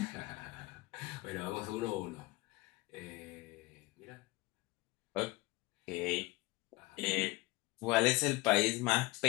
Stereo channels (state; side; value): quieter; right; 21.3 dB